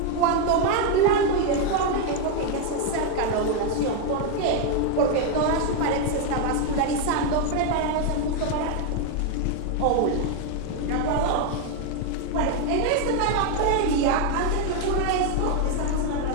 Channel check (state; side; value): different; both; correlation 0.01